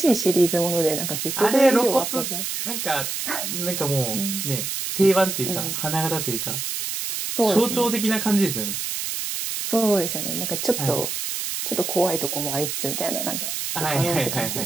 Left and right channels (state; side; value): noise; right; hiss, 3 dB below the sound